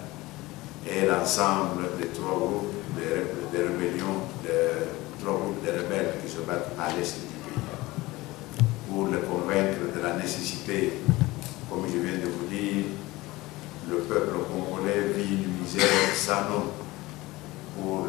et l'ensemble des 3 groupes de rébellions, de 3 groupes de rebelles qui se battent à l'est du pays, pour les convaincre de la nécessité, comme je viens de vous dire, le peuple congolais vit une misère sans nom, pour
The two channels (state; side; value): quieter; right; 20.0 dB